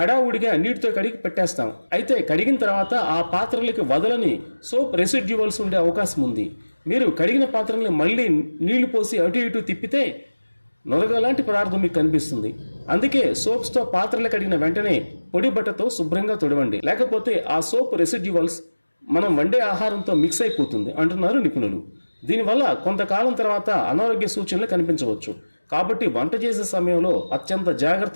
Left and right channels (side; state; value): both; inverted; correlation -1.00